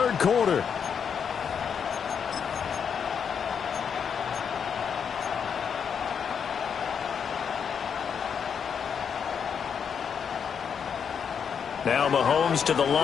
quarter. Now Mahomes to the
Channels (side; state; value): right; quieter; 7.1 dB